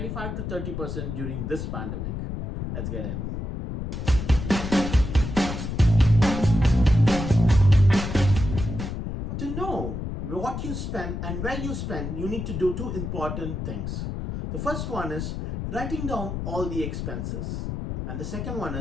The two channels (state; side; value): noise; left; rumble, 5 dB below the sound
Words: to 30% during this pandemic. Let's get in. To know what you spend and where you spend, you need to do two important things. The first one is writing down all the expenses, and the second one